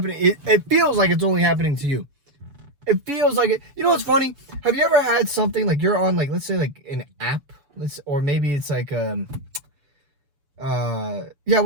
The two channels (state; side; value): late; left; 7.0 ms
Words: It feels like it's only happening to you. It feels like it. You know what's funny? Have you ever had something like you're on, like, let's say like an app, or maybe it's like yeah,